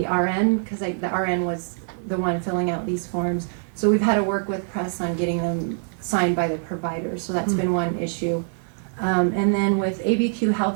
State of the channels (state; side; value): silent; left; digital silence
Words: RN because the RN was the one filling out these forms. So we've had to work with Press on getting them signed by the provider. So that's been one issue. And then with ABQ